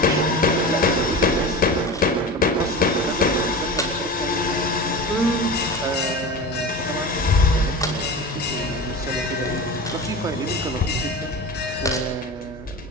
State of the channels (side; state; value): both; normal; correlation 0.30